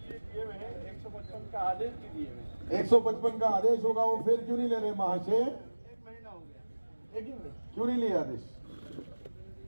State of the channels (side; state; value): both; inverted; correlation -1.00